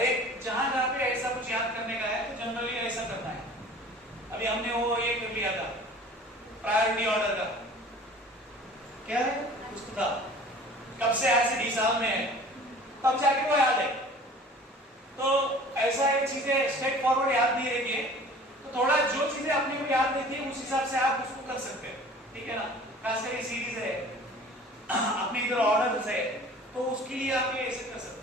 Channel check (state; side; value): normal; both; correlation 0.46